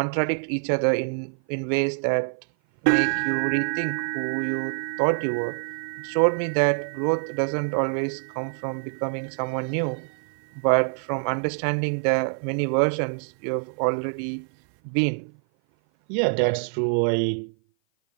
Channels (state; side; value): silent; left; 56 dB below the other